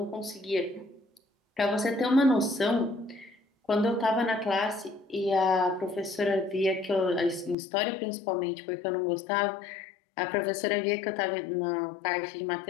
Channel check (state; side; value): drops out; right; at 7.6 s